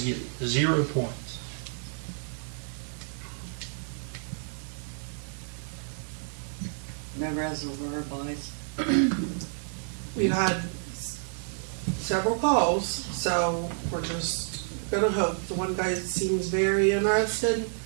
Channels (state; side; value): silent; left; 58 dB below the other